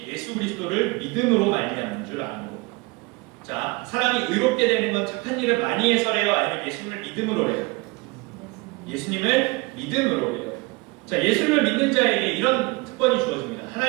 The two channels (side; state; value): left; quieter; 25.9 dB